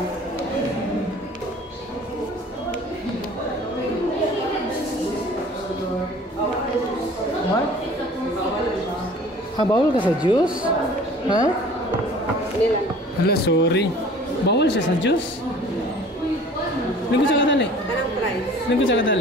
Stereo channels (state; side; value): normal; both; correlation 0.48